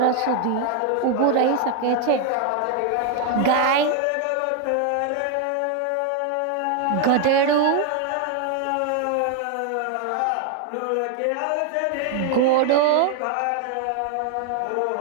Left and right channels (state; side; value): different; both; correlation 0.00